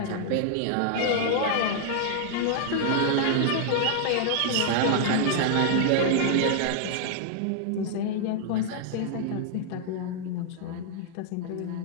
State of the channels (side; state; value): both; different; correlation -0.01